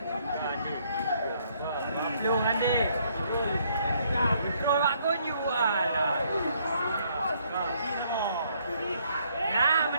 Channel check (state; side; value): inverted; both; correlation -0.68